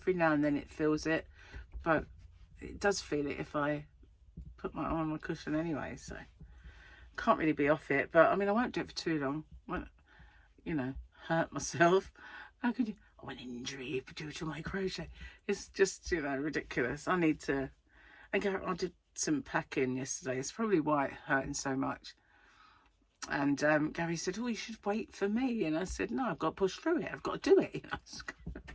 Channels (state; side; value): identical; both; correlation 1.00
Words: now and then it feels it, but it does feel it if I put my arm on my cushion anyway. So can't really be off it. But I mean, I won't do it for too long. Won't, you know, hurt myself. How could you? Oh, an injury due to my crochet. It's just, you know, ridiculous. I need to. And I did some packing yesterday. It's probably why it's hurting so much. And Gary said, oh, you should wait for me. And I said, no, I've got to push through it. I've got to do it. You know?